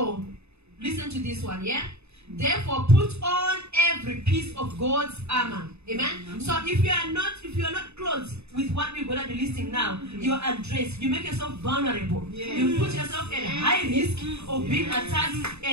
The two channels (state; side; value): late; left; 0.80 ms